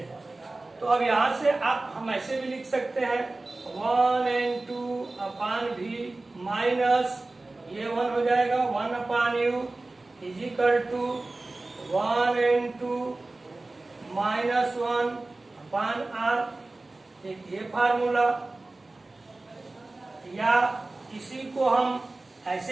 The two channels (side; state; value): left; quieter; 3.1 dB